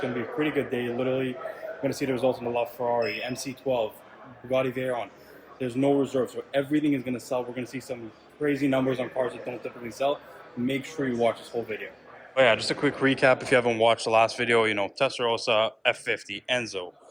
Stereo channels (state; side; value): identical; both; correlation 1.00